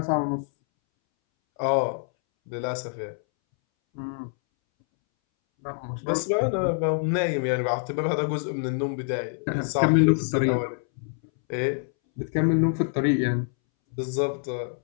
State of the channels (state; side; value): silent; right; 61 dB below the other